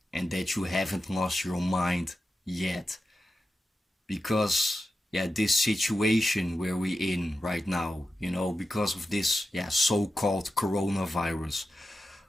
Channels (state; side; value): normal; both; correlation 0.91